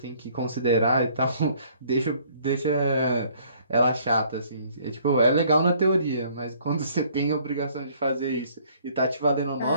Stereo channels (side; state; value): both; inverted; correlation -0.60